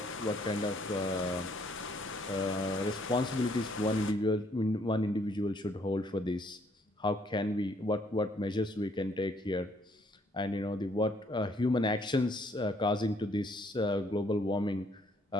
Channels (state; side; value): normal; both; correlation 0.66